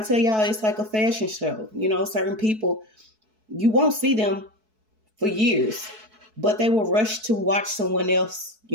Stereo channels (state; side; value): late; left; 4.6 ms